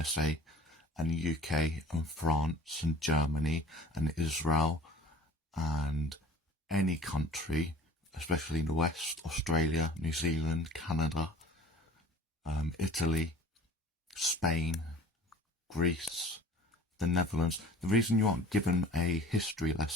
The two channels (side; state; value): both; normal; correlation 0.46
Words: and the UK and France and Germany and Israel and any country, especially in the West, Australia, New Zealand, Canada, Italy, Spain, Greece, the Netherlands. The reason you aren't given a history